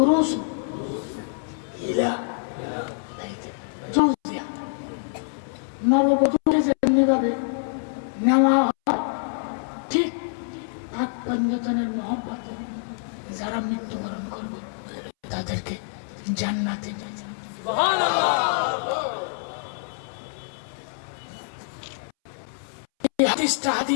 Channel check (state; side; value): silent; right; 61 dB below the other